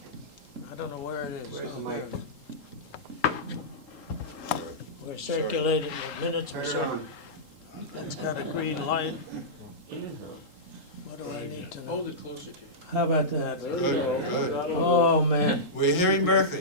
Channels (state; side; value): late; right; 3.8 ms